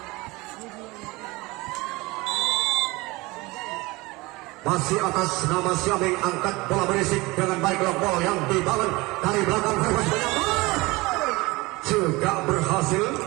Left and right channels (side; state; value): left; quieter; 22.5 dB